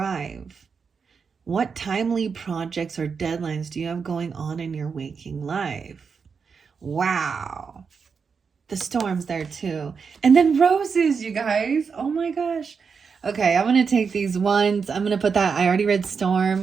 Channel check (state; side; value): quieter; left; 5.7 dB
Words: What timely projects or deadlines do you have going on in your waking life? Wow. The storm's there too. And then roses, you guys. Oh my gosh. Okay, I'm going to take these ones. I'm going to put that. I already read